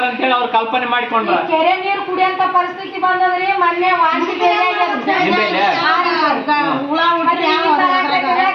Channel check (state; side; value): identical; both; correlation 1.00